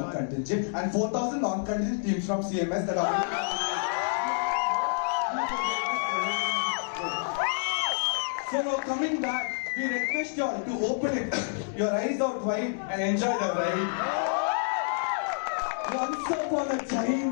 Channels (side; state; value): right; silent; 59 dB below the other